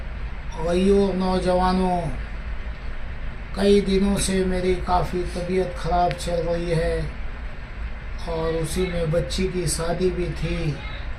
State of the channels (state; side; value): identical; both; correlation 1.00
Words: भाइयों, नौजवानों, कई दिनों से मेरी काफ़ी तबीयत ख़राब चल रही है और उसी में बच्ची की शादी भी थी।